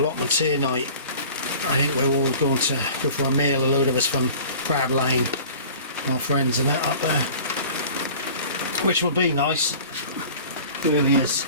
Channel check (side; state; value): both; inverted; correlation -0.44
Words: here night. I think we're all going to go for a meal, a load of us from Crab Lane, our friends and that up there, which will be nice. It really is.